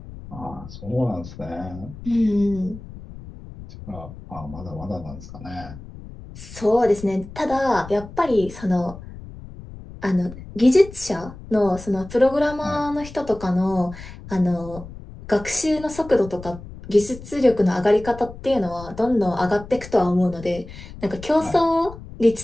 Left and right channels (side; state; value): left; noise; rumble, 15 dB below the sound